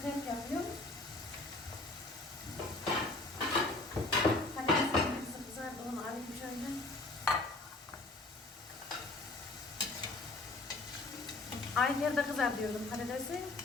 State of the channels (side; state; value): right; quieter; 3.0 dB